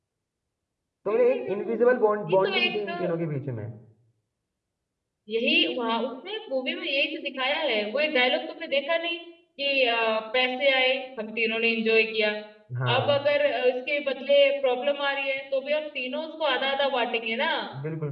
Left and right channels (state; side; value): identical; both; correlation 1.00